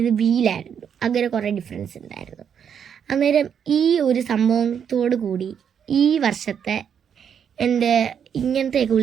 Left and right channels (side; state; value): left; quieter; 7.9 dB